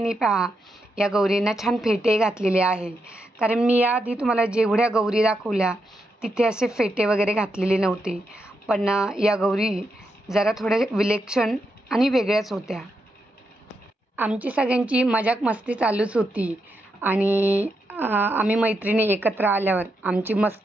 पहा, या गौरींना छान फेटे घातलेले आहे. कारण मी याआधी तुम्हाला जेवढ्या गौरी दाखवल्या तिथे असे फेटे वगैरे घातलेले नव्हते. पण या गौरी जरा थोड्या विलक्षण आणि वेगळ्याच होत्या. आमची सगळ्यांची मजाक मस्ती चालूच होती आणि आम्ही मैत्रिणी एकत्र आल्यावर आमची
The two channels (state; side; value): normal; both; correlation 0.83